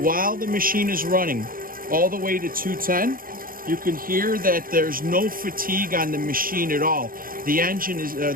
the machine is running all the way to 210. You can hear that there's no fatigue on the machine at all. The engine is,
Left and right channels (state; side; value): late; left; 0.41 ms